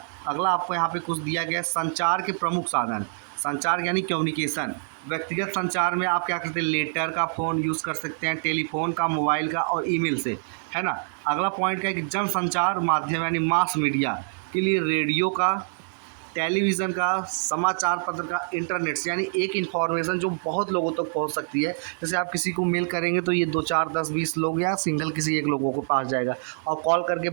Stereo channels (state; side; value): silent; left; digital silence